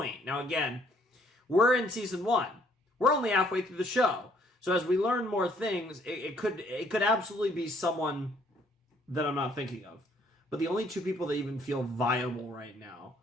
now again, we're in season 1. We're only halfway through the show. So as we learn more things, it could absolutely be someone that I'm not thinking of. But the only 2 people that even feel viable right now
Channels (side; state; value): both; normal; correlation 0.64